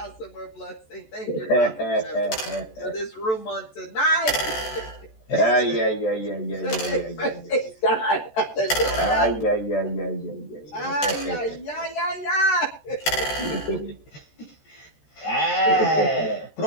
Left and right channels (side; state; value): right; late; 14 ms